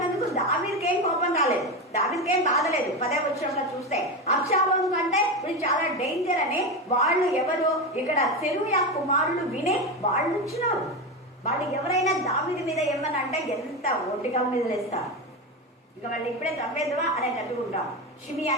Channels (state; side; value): normal; both; correlation 0.17